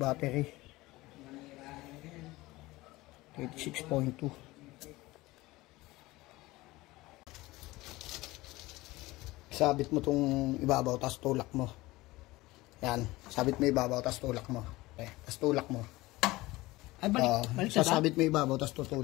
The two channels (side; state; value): right; quieter; 19.7 dB